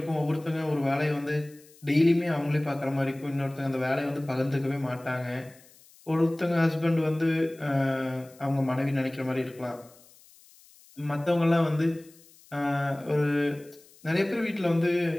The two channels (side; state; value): left; noise; hiss, 26 dB below the sound